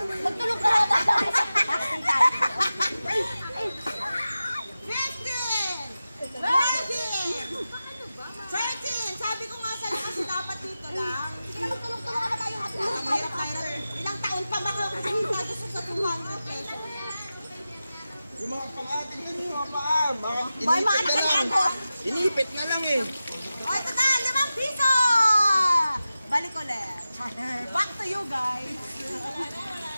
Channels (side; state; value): both; inverted; correlation -0.94